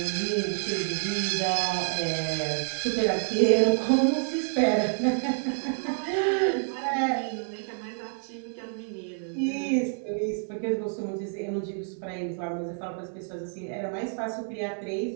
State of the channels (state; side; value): silent; left; 59 dB below the other